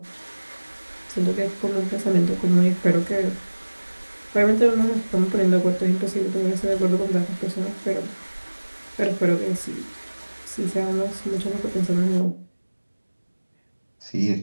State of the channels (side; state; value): both; inverted; correlation -1.00